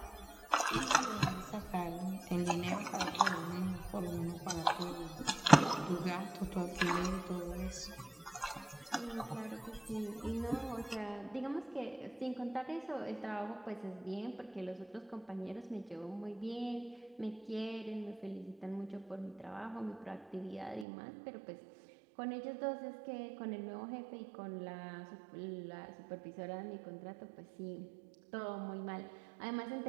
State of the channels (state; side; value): drops out; left; at 20.9 s